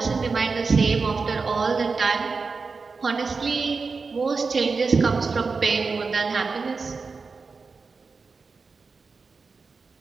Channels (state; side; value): quieter; left; 4.5 dB